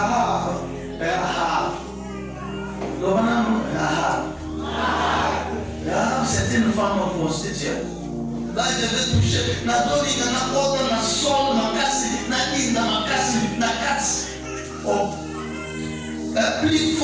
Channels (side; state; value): both; identical; correlation 1.00